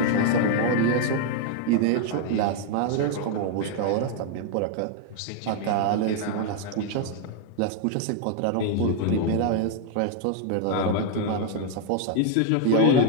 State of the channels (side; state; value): both; different; correlation 0.00